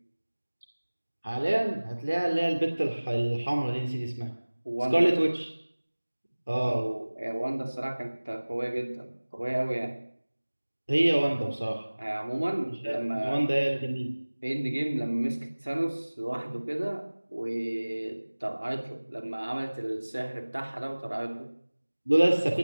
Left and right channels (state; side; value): inverted; both; correlation -1.00